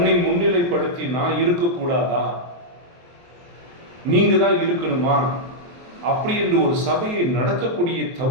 முன்னிலைப்படுத்தி நான் இருக்கக்கூடாதா, நீங்க தான் இருக்கணுமா அப்படி என்று ஒரு சபையை நடத்தக்கூடிய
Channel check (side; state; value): left; late; 23 ms